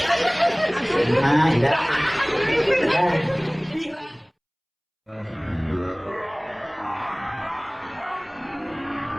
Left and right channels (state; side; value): identical; both; correlation 1.00